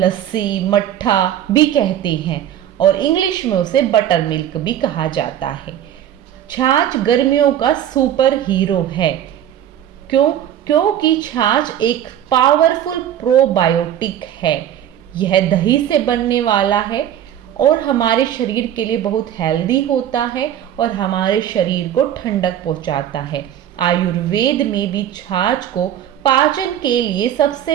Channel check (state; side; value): quieter; left; 10.8 dB